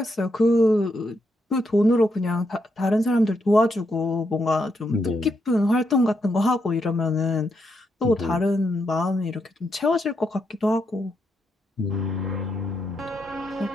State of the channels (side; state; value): both; normal; correlation 0.80